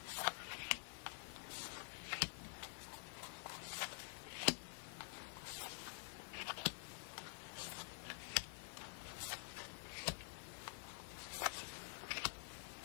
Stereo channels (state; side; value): silent; right; digital silence